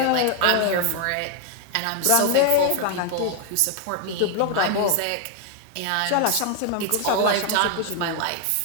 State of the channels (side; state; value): both; different; correlation 0.00